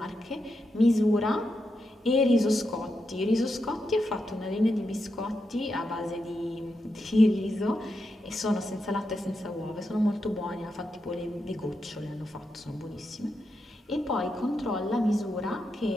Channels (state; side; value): normal; both; correlation 0.85